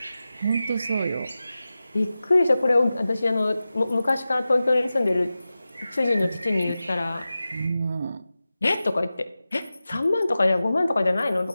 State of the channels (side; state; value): both; inverted; correlation -0.94